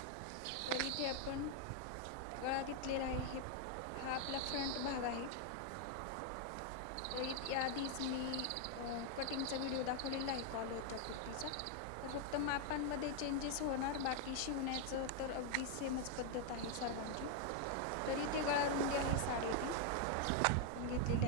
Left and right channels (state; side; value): different; both; correlation 0.00